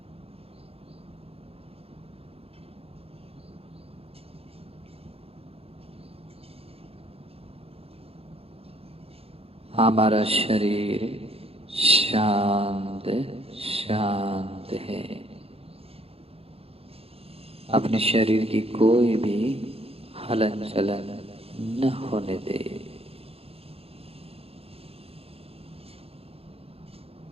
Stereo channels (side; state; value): left; late; 0.28 ms